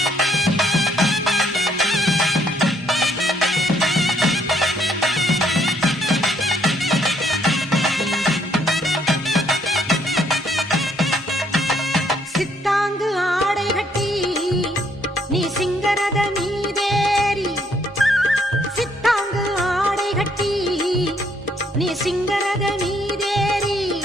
சித்தாங்கு ஆடை கட்டி நீ சிங்கரத மீதேறி சித்தாங்கு ஆடை கட்டி நீ சிங்கரத மீதேறி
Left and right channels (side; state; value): both; normal; correlation 0.69